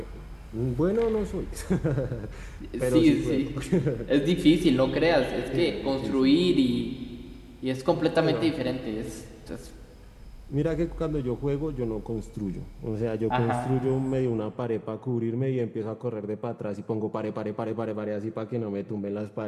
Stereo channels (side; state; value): both; identical; correlation 1.00